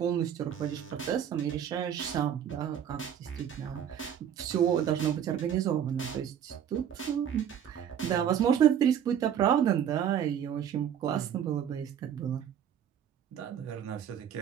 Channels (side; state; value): left; quieter; 9.2 dB